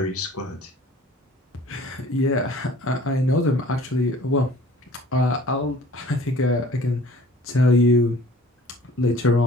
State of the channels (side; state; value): both; normal; correlation 0.50